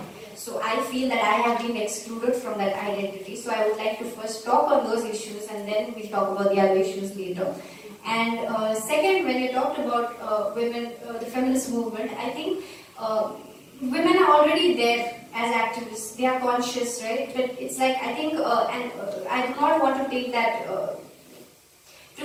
So I feel that I have been excluded from that identity. So I would like to first talk on those issues and then we'll talk about the other issues later. And second, when you talked about women, the feminist movement, I think women are already there as activists. They are conscious, right? But it's like, I think, I do not want to take that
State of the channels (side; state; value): both; identical; correlation 1.00